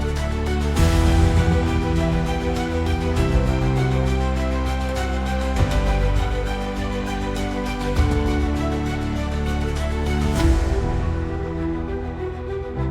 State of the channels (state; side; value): identical; both; correlation 1.00